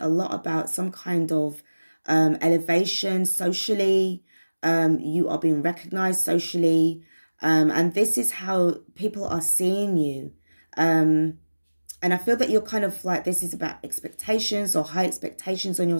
lot about some kind of elevation socially. You are being recognized socially. And this is how people are seeing you. And I feel that you're kind of like, this is about expectations or high expectations on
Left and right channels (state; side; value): inverted; both; correlation -1.00